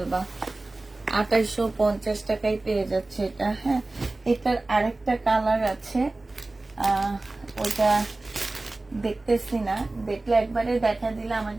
2850 টাকায় পেয়ে যাচ্ছে এটা। হ্যাঁ, এটার আরেকটা কালার আছে, ওটা দেখতেছি না, দেখলে একবারে দেখা দিলে আমার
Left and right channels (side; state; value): left; quieter; 3.0 dB